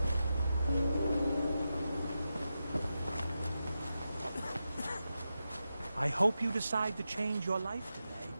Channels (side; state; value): both; inverted; correlation -0.90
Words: I hope you decide to change your life today.